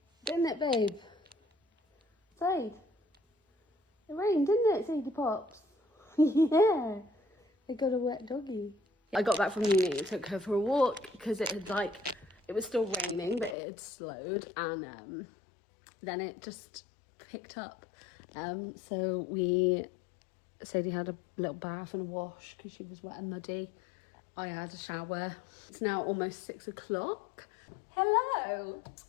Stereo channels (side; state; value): right; drops out; at 13.6 s